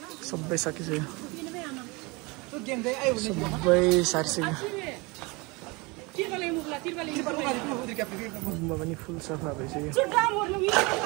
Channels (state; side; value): quieter; left; 26.3 dB